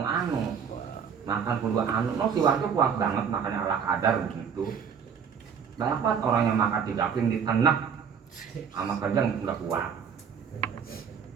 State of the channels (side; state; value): left; quieter; 7.0 dB